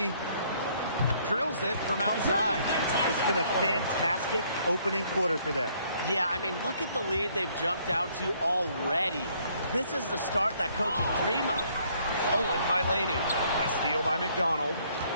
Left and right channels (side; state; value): both; inverted; correlation -0.65